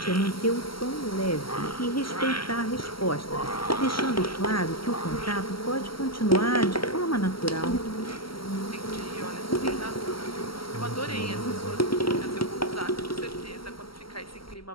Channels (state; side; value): late; right; 0.74 ms